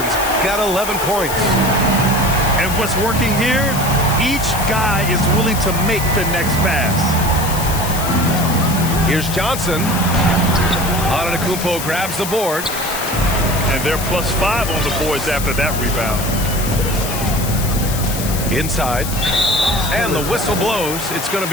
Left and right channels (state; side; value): noise; left; hiss, 7 dB below the sound